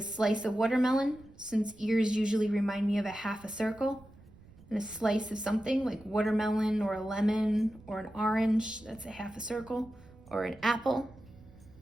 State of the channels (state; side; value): noise; right; rumble, 23 dB below the sound